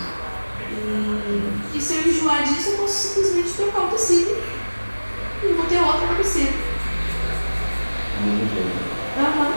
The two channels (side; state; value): both; inverted; correlation -1.00